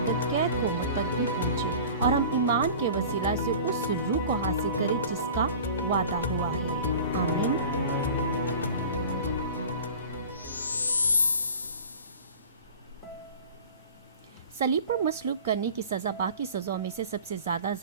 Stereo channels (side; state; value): both; inverted; correlation -0.40